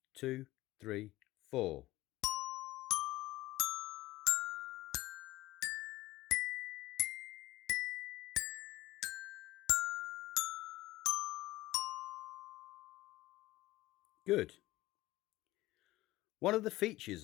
2, 3, 4. Good. One of the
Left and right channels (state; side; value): quieter; right; 17.5 dB